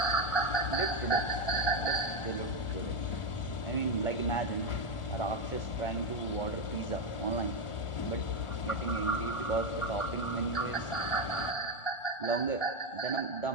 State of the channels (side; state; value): right; late; 1.4 ms